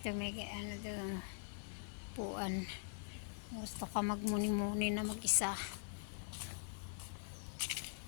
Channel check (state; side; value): silent; right; digital silence